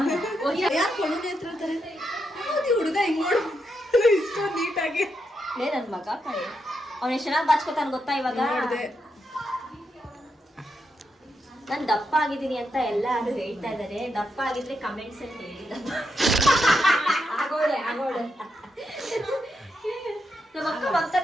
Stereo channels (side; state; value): both; normal; correlation 0.83